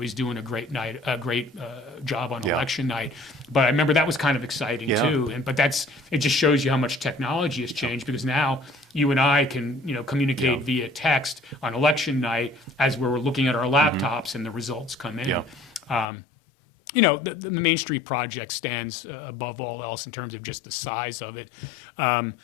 doing a great job on election night. But I remember that was kind of exciting too. But it just shows you how much technology has changed, because now you and I can communicate via text on election night as we're looking at our laptops and the results come in. The Main Street project stands above all else in terms of just the size of it. I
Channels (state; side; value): drops out; right; at 16.1 s